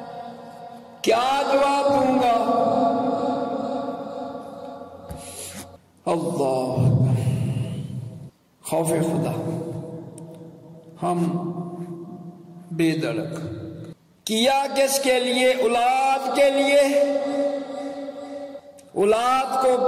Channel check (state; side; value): identical; both; correlation 1.00